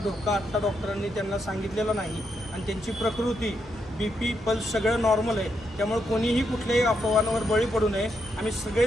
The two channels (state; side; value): normal; both; correlation 0.81